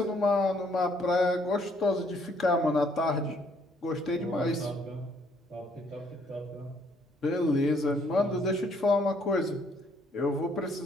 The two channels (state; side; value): normal; both; correlation 0.66